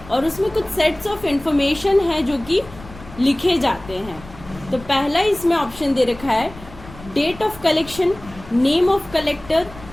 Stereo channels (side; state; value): left; noise; rumble, 18 dB below the sound